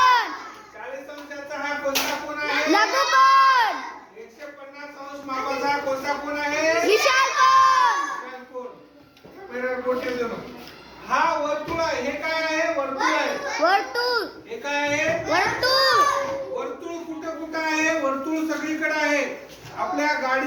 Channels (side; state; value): both; identical; correlation 1.00